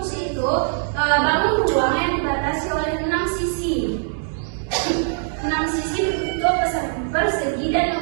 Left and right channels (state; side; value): silent; left; digital silence